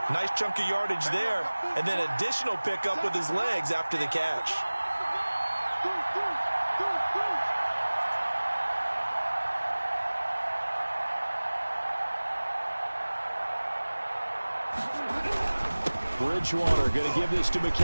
nice chunk of yardage there, and then additional pickup with his legs after the catch. Bridgewater going to give this to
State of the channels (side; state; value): both; inverted; correlation -1.00